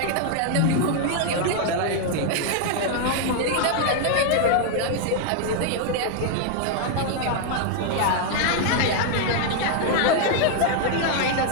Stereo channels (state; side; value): different; both; correlation 0.00